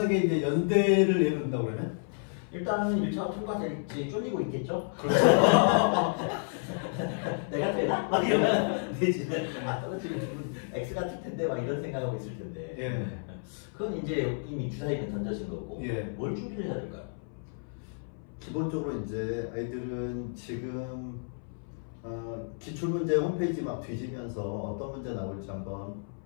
이제 연대를 예를 든다고 그러면? 일단은 1차가 통과될지 쫄리고 있겠죠? 그렇죠. 내가 되나? 막 이러면 되지. 아, 떨어지면 X 같을 텐데 막 이런 생각하고 있을 텐데. 예. 그건 이제 이미 주사위는 던져진 거고. 예. 뭘 준비를 해야 될까요? 기본적으로 이제 아이들은 지금 기출문제 홈페이지 막 뒤지면서 어떤 문제 나올지 한번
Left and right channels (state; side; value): silent; right; 57 dB below the other